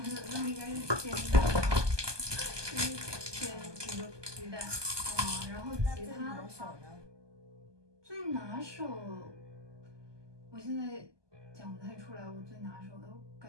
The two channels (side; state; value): left; late; 1.2 ms